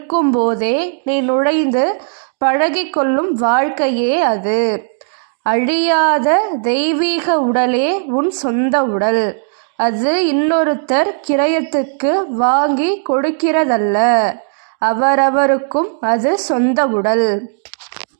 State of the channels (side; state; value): left; silent; digital silence